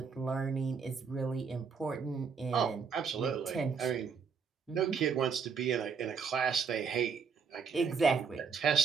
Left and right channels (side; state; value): left; quieter; 5.8 dB